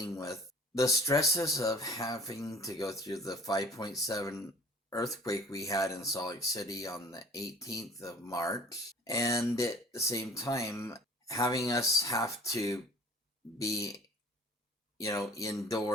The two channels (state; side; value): normal; both; correlation 0.48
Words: with the stresses of having to go through the 5.7 earthquake we had in Salt Lake City on the 18th of March, and at the same time having us have to be